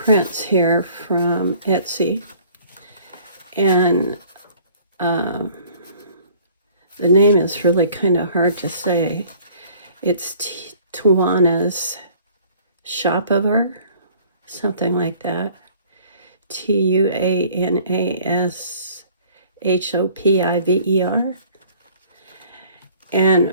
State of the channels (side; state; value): both; inverted; correlation -0.53